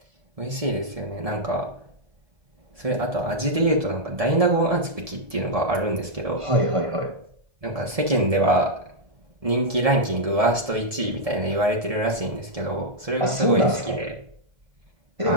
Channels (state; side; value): late; left; 1.7 ms